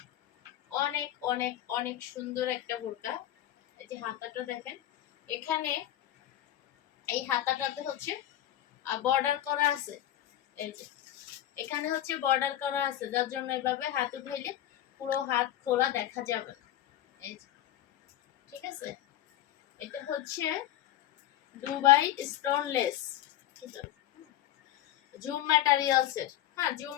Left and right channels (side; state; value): right; quieter; 12.8 dB